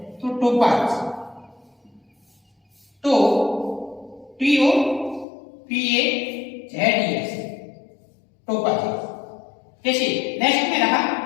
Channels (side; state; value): right; drops out; at 5.2 s